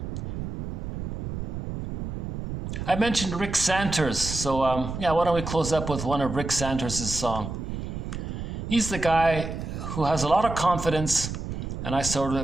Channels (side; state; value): right; noise; rumble, 5 dB below the sound